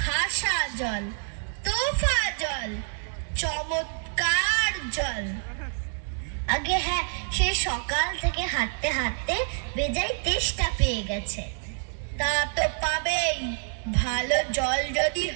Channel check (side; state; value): left; silent; 60 dB below the other